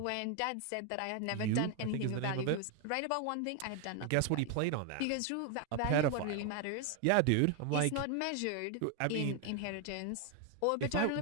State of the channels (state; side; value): different; both; correlation 0.01